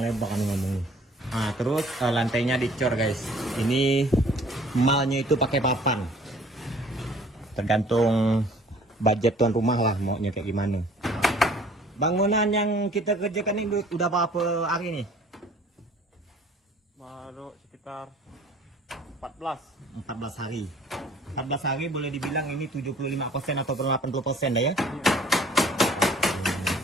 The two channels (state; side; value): normal; both; correlation 0.53